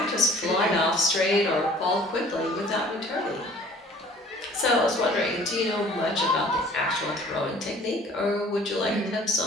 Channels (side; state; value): both; normal; correlation 0.52